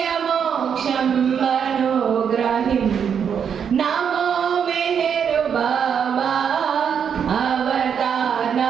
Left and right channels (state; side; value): quieter; left; 7.5 dB